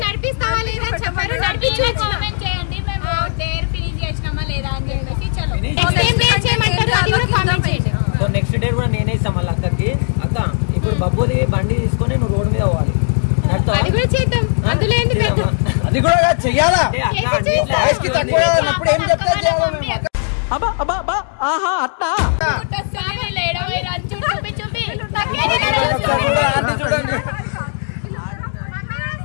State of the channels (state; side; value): silent; right; digital silence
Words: నడిపిస్తావా లేదా అని చెప్పారు. కామెంట్ చేయండి మేము డేర్ ఫినిష్ చేసినామా లేదా అని చెప్పేసి. చలో అది కూడా కామెంట్ చేయండి. సో నెక్స్ట్ డే కూడా నేనే ఇస్తాం మళ్ళీ అక్కకి. అక్క ఇప్పుడు బబ్బుది బండి తీసుకొని నువ్వు రోడ్ మీద పోవాలి. అది కూడా చేద్దాం, అందులో ఏంటి పెద్ద అది కూడా చెయ్యాలా? చేసి తక్కువ ఏం చెప్తారు చేయాలి. చూడండి